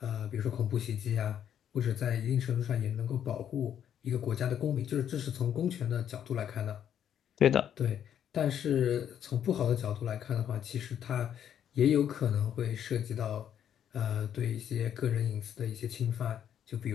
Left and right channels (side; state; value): right; quieter; 9.5 dB